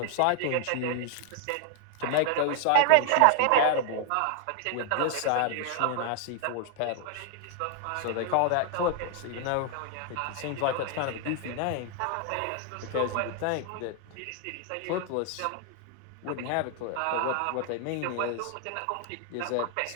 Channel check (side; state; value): both; different; correlation 0.00